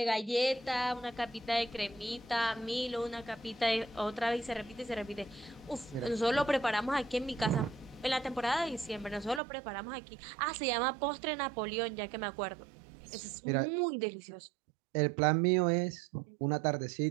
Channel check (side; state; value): left; drops out; at 9.4 s